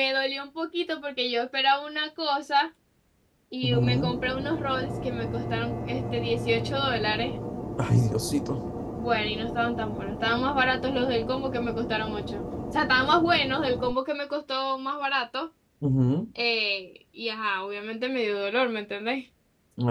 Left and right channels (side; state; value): both; identical; correlation 1.00